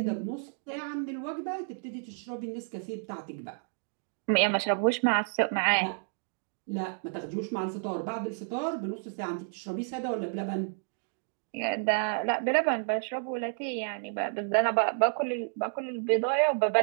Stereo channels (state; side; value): silent; left; digital silence